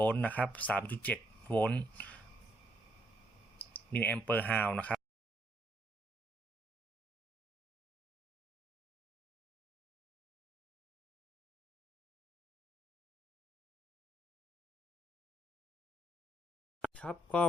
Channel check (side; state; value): both; normal; correlation 0.73